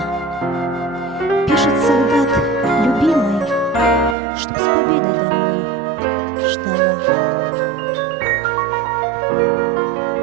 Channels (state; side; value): drops out; left; at 4.2 s